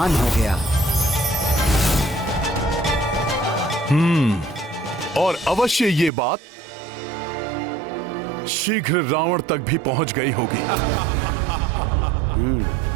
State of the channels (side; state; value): left; drops out; at 6.1 s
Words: हो गया। और अवश्य ये बात शीघ्र रावण तक भी पहुंच गई होगी।